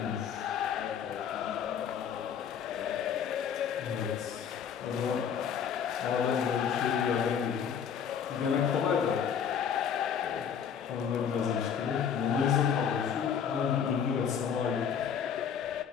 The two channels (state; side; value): quieter; right; 7.7 dB